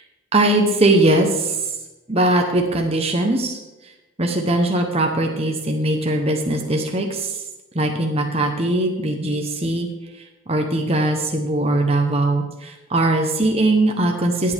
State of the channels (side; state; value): both; normal; correlation 0.50